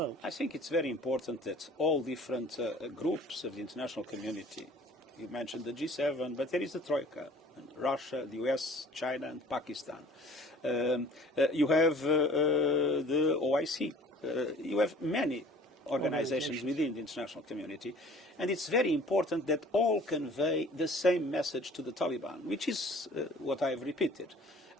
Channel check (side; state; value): both; normal; correlation 0.50